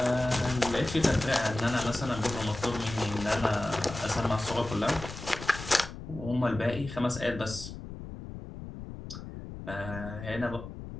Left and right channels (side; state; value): left; noise; rumble, 11 dB below the sound